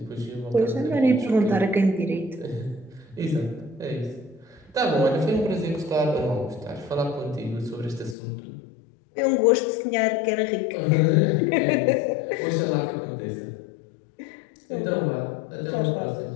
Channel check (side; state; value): right; drops out; at 8.2 s